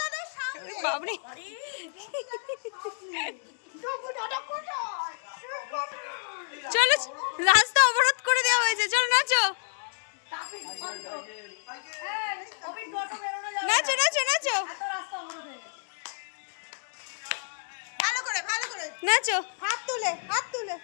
দাদার সামনে বাবরে, যোগু দাদা কোথায় চলো, রাস্তা অবরোধ করে দেওয়া হয়েছে, চলো নাচো নাচো নাচো নাচো ভালো করে ভালো করে নাচো, হাত তুলে হাত তুলে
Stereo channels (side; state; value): right; silent; digital silence